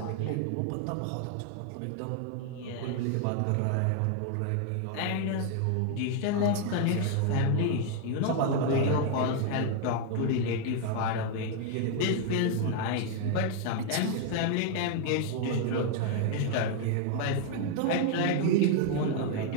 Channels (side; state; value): both; different; correlation 0.00